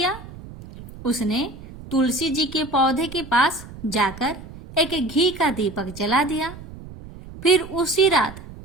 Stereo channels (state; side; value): noise; right; rumble, 15 dB below the sound